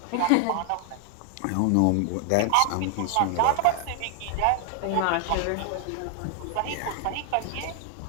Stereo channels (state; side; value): different; both; correlation 0.00